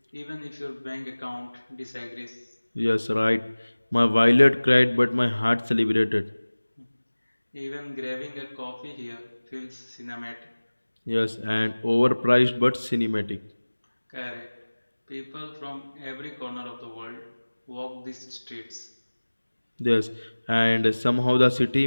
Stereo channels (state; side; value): inverted; both; correlation -1.00